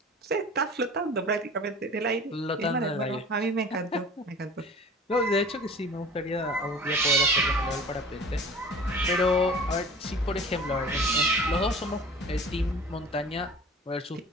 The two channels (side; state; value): both; normal; correlation 0.42